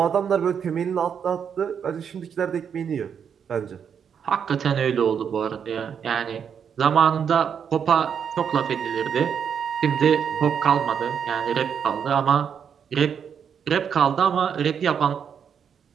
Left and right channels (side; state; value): left; quieter; 7.5 dB